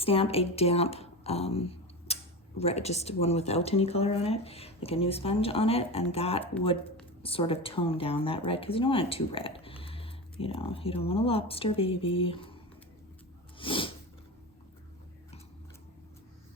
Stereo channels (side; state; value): both; normal; correlation 0.24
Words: a damp red, just one without any color on it, like a new sponge on it, and that would sort of tone down that red, because you don't want it too red. You know, you don't want a lobster baby.